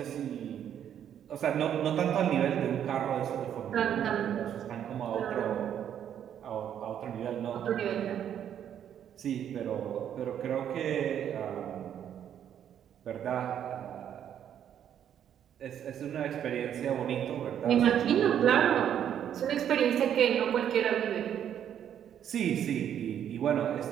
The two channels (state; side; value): quieter; left; 9.6 dB